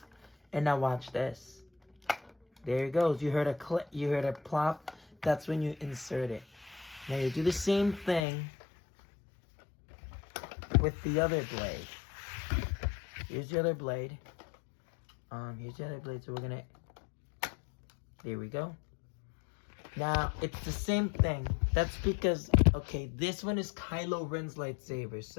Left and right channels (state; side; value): drops out; right; at 8.2 s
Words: And now watch this. There it goes. You heard a click. You heard a plop. That's when you insert it. Now you do the same thing with the other blade. Here's the other blade. Here's the other blade. So we're gonna. There we go. Now it's the same thing. That's because, okay, this one is Kylo Ren's lightsaber.